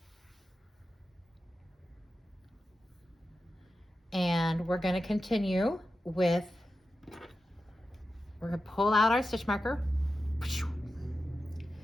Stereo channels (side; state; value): both; normal; correlation 0.91